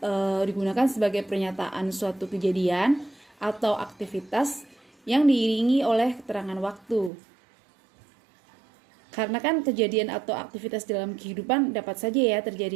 digunakan sebagai pernyataan suatu kejadian atau aktivitas yang diiringi oleh keterangan waktu. Karena kan kejadian atau aktivitas dalam kehidupan dapat saja ya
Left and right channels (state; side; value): drops out; left; at 7.1 s